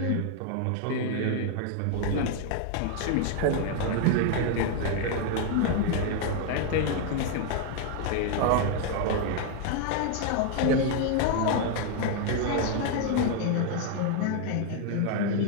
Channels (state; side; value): different; both; correlation 0.00